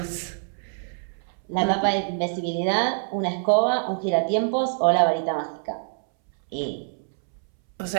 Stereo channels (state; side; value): silent; left; 62 dB below the other